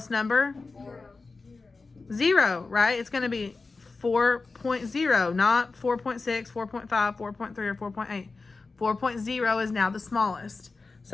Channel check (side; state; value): right; quieter; 4.0 dB